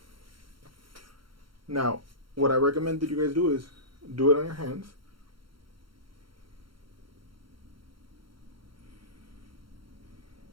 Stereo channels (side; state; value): left; late; 0.73 ms